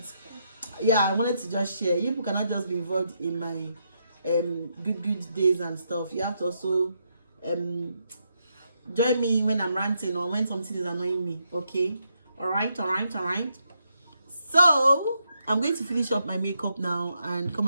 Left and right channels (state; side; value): inverted; both; correlation -0.80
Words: yeah, I wanted to just share. You people cannot just be involved in my good days and stuff. You have to also join me when I'm ranting or when something is annoying me, okay? All right. So I'm going to finish up my makeup now and come